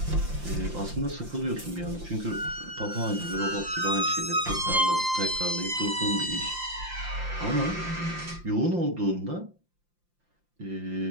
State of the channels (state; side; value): late; left; 5.8 ms